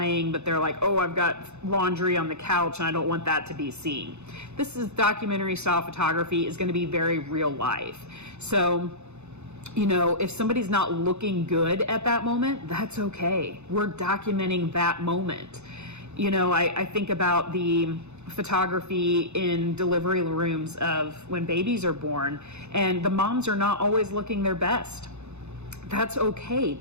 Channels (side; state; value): left; late; 0.81 ms